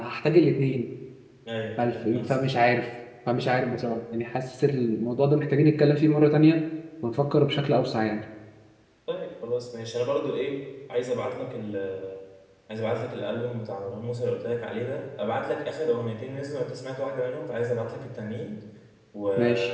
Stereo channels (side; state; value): both; identical; correlation 1.00